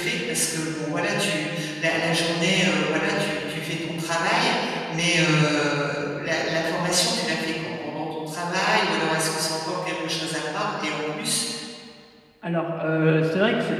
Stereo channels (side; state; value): both; identical; correlation 1.00